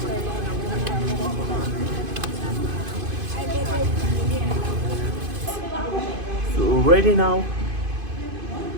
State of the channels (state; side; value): late; left; 2.5 ms